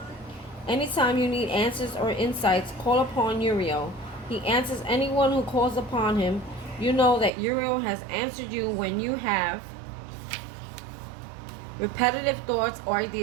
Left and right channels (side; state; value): left; drops out; at 7.3 s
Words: you need answers or insights, call upon Uriel. He answers anyone who calls upon him. You know that Uriel has answered you when you have repetitive thoughts or